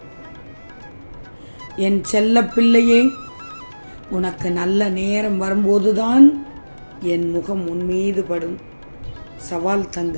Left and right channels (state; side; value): inverted; both; correlation -1.00